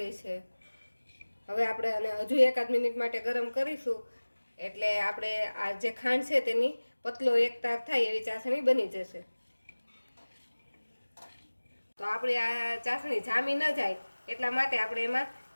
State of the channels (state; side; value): inverted; both; correlation -1.00